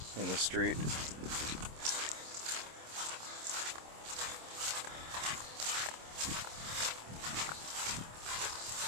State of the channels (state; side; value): late; left; 26 ms